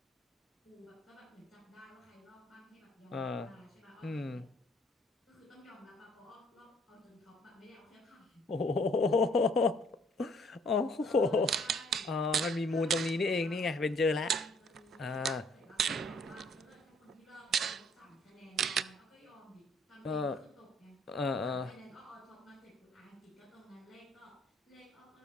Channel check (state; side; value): normal; both; correlation 0.62